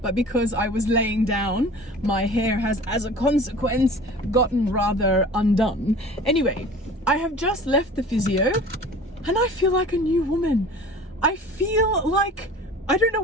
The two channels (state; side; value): normal; both; correlation 0.42